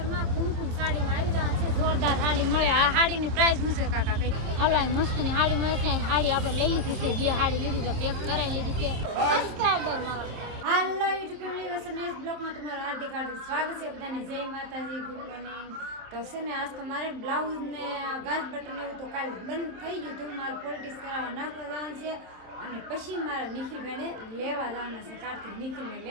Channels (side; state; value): left; late; 26 ms